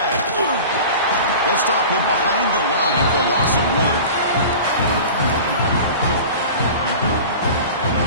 They'll stop him behind the line for a loss of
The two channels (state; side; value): inverted; both; correlation -0.37